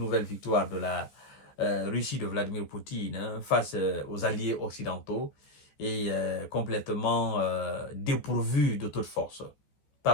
victoire de la Russie de Vladimir Poutine face aux alliés occidentaux et complètement dépourvus de toute force.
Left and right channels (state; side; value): late; right; 14 ms